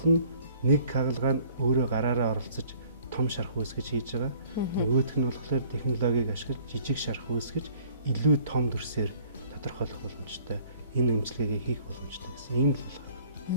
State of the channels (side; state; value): both; inverted; correlation -0.56